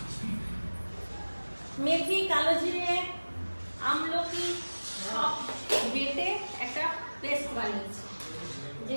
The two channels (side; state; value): both; inverted; correlation -1.00